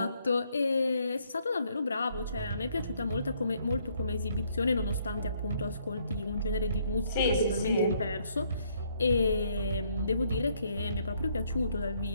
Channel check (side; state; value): both; inverted; correlation -0.69